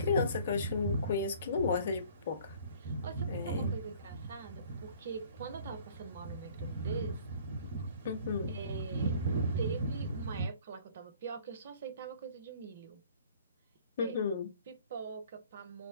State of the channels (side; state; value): both; inverted; correlation -0.53